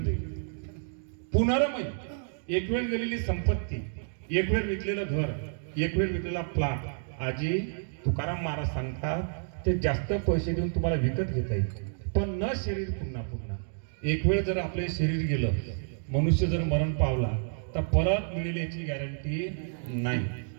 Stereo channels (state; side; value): silent; left; digital silence